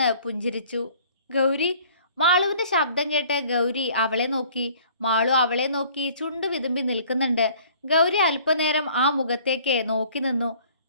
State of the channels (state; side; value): inverted; both; correlation -0.53